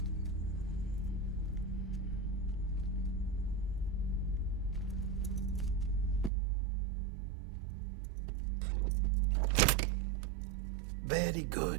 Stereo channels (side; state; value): left; drops out; at 6.3 s